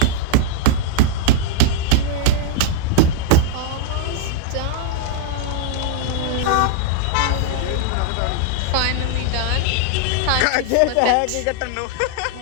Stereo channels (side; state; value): both; different; correlation -0.01